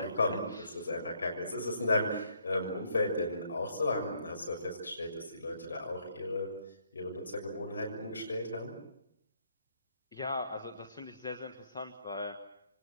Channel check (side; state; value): both; inverted; correlation -0.69